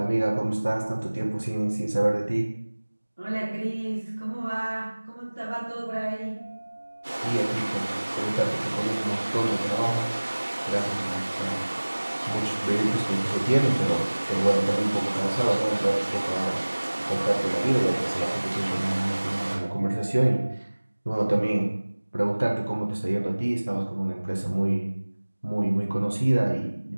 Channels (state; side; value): inverted; both; correlation -1.00